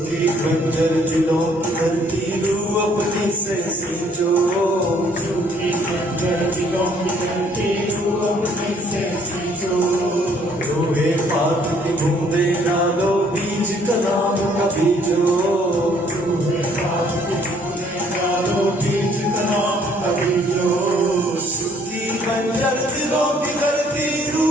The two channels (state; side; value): normal; both; correlation 0.63